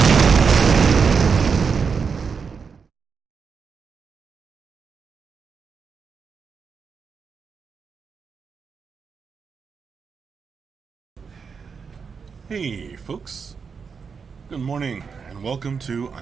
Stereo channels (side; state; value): left; quieter; 5.8 dB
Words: Hey folks, good morning and welcome to